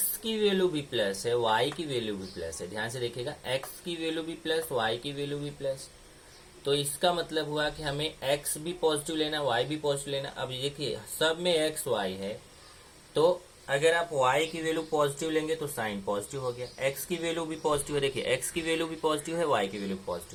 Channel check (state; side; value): identical; both; correlation 1.00